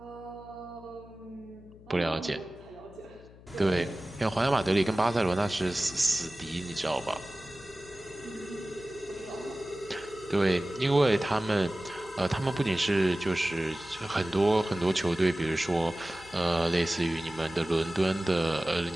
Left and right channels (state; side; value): noise; left; hum, 21 dB below the sound